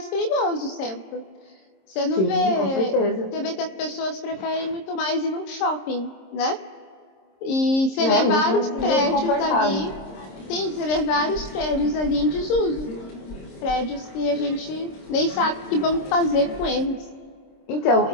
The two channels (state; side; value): late; right; 26 ms